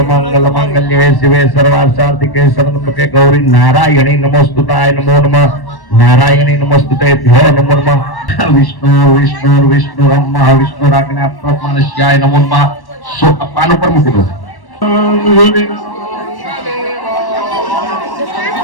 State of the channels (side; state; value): right; late; 1.1 ms